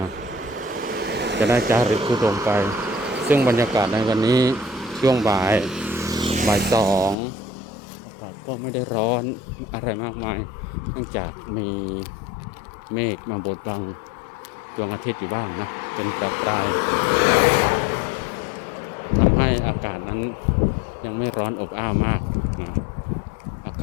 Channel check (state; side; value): drops out; right; at 7.2 s